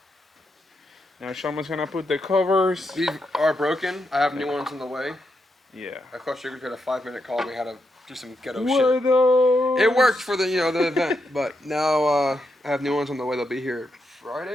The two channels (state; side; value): normal; both; correlation 0.83